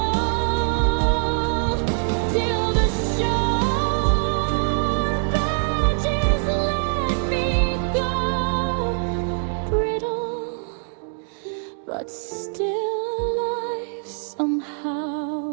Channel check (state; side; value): silent; left; 63 dB below the other